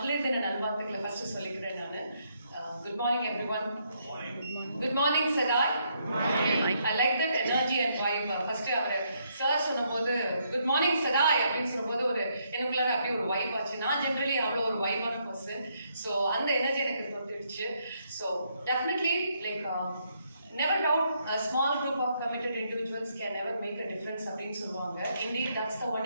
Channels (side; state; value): both; inverted; correlation -0.74